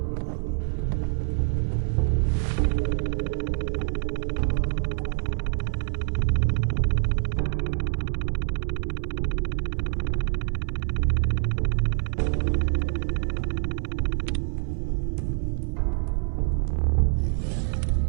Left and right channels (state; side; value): silent; left; 55 dB below the other